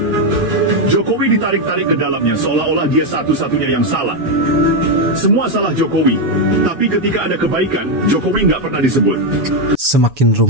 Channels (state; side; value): late; left; 7.1 ms